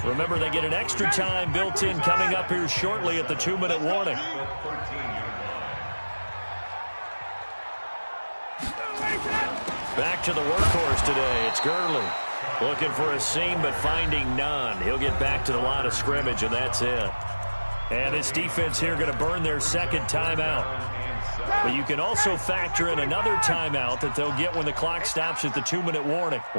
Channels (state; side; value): inverted; both; correlation -1.00